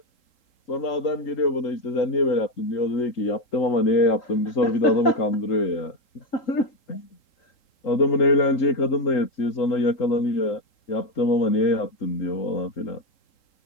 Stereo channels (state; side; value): late; right; 3.8 ms